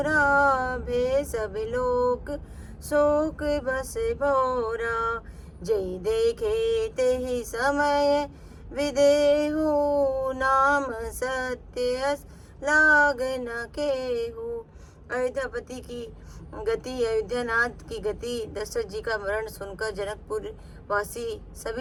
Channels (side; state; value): both; identical; correlation 1.00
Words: भे सब लोक शोक बस भौरा। जय देखे तेहि समय विदेहु, नाम सत्य लाग न केहू। अयोध्यापति की गति, अयोध्यानाथ की गति, दशरथ जी का मरण सुनकर जनकपुर वासी